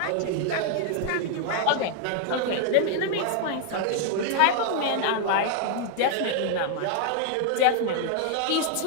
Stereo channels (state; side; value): different; both; correlation 0.00